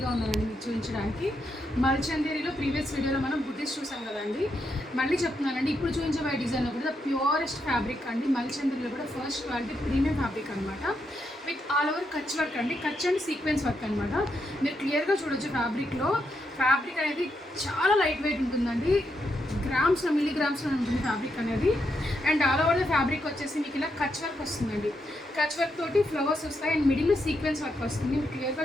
ఉన్నానండి మీకు చూపించడానికి. మల్చందేరిలో ప్రీవియస్ వీడియోలో మనం బుటీస్ చూసాం కదండి. మళ్ళీ చెప్తున్నానండి, ఇప్పుడు చూపించబోయే డిజైన్ కూడా ప్యూరెస్ట్ ఫ్యాబ్రిక్ అండి. మల్చందేరిలో కూడా ఫస్ట్ క్వాలిటీ ప్రీమియం ఫ్యాబ్రిక్ అనమాట. With all over Kutch work అండి. కచ్ అండ్ సీక్వెన్స్ వర్క్ అనమాట. మీరు క్లియర్గా చూడొచ్చు ఫ్యాబ్రిక్లో. ఫ్యాబ్రిక్ అనేది చాలా లైట్ వెయిట్ ఉంటుందండి. గ్రామ్స్లో మిల్లీగ్రామ్స్లో ఉంటుంది ఫ్యాబ్రిక్ అనేది. And all over the fabric వచ్చేసి మీకు ఇలా కచ్ వర్క్ వస్తుందండి. కచ్ వర్క్ తోటి ఫ్లవర్స్ వస్తాయి అండ్ మిడిల్లో సీక్వెన్స్ వర్క్ వస్తుంది. మీరు క్లియర్గా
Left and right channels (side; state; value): both; normal; correlation 0.81